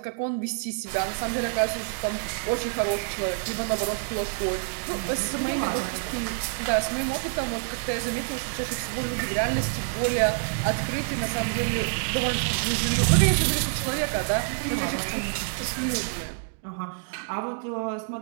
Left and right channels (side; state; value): left; silent; digital silence